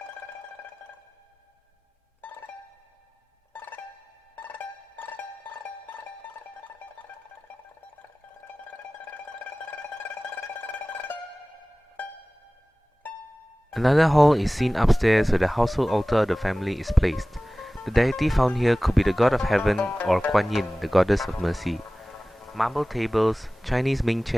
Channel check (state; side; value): normal; both; correlation 0.98